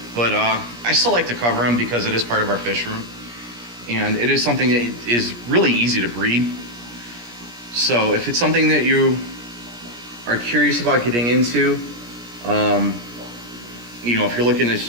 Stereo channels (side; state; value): left; late; 17 ms